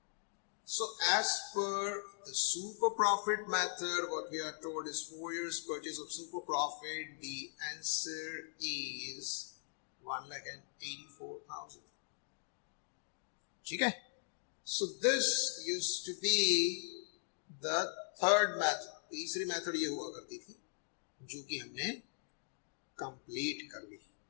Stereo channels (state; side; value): silent; right; digital silence